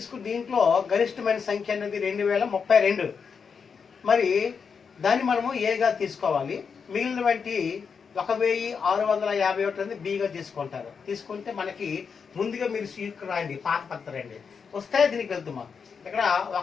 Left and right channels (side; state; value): right; quieter; 6.0 dB